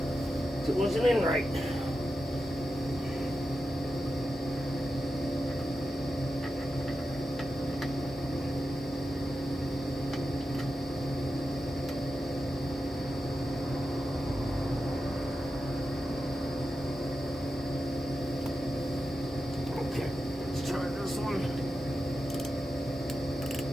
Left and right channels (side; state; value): both; normal; correlation 0.90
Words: It wasn't in right. Okay, let's try this one.